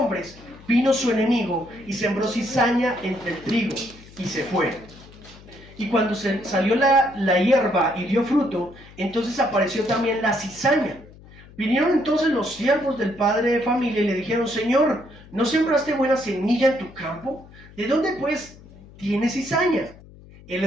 vino su enemigo y sembró cizaña entre el trigo y se fue. Y cuando salió la hierba y dio fruto, entonces apareció también la cizaña. Vinieron entonces los siervos del padre de familia y le dijeron, Señor, ¿no sembraste buena semilla en tu campo? ¿De dónde pues tienes cizaña? Él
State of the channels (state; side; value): noise; left; hum, 21 dB below the sound